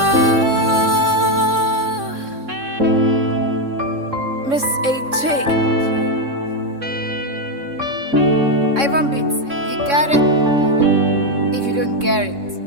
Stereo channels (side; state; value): left; late; 3.6 ms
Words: Miss AJ. Ivan Beats, you got it. If you don't get it,